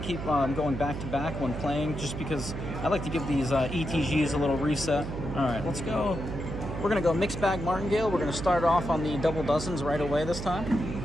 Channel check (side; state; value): right; noise; hum, 6 dB below the sound